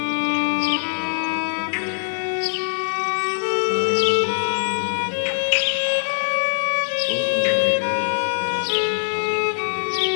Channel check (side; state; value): right; silent; digital silence